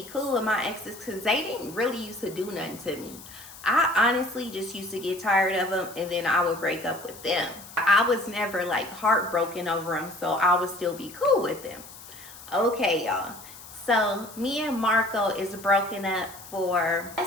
cool with my exes because they didn't really used to do nothing to me. I honestly just used to get tired of them and then I would break up with them. I was never like heartbroken over them, so I would still be cool with them. Okay, y'all. So me and Marco is broken up for,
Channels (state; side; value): noise; left; hiss, 17 dB below the sound